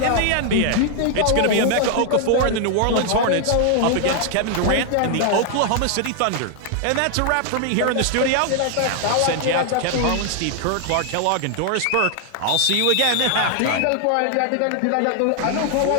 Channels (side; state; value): both; different; correlation 0.00